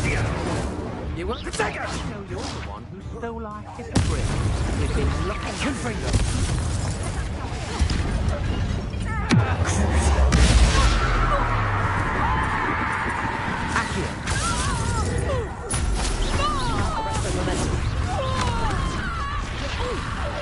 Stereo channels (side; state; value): both; identical; correlation 1.00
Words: You want to take us? No, you're the one who stole our hippogriff. We've been looking for freedom. Accio. Arrest the momentum.